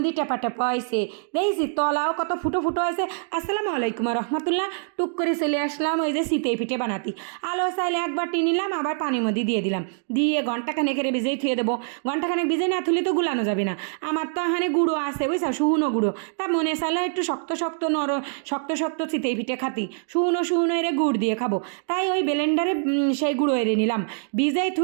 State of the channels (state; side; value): silent; left; digital silence